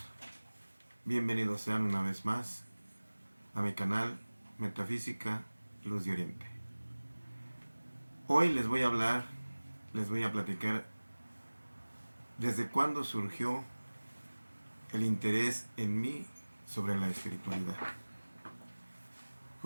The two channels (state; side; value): inverted; both; correlation -1.00